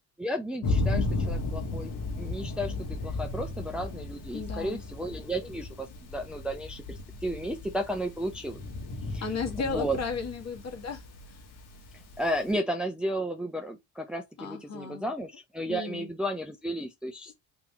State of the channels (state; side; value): normal; both; correlation 0.61